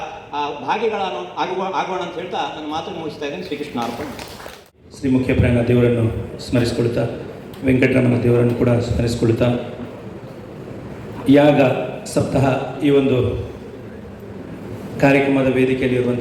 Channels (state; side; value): identical; both; correlation 1.00